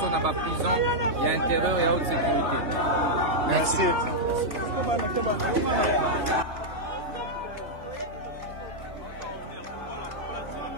na ba prison ya intérieur ya haute sécurité. Merci.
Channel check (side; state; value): left; late; 3.2 ms